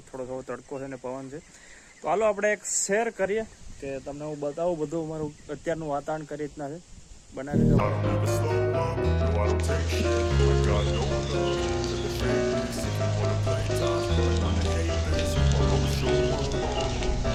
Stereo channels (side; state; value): both; identical; correlation 1.00